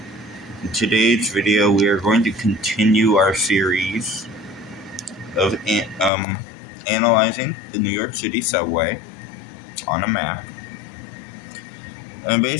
In today's video, we are going to continue our series of analyzing the New York City subway on a map and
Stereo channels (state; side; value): drops out; right; at 6.1 s